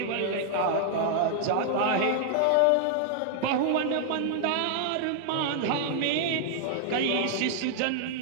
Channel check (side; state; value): both; different; correlation 0.00